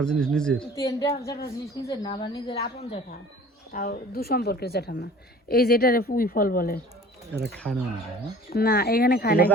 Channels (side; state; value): both; normal; correlation 0.47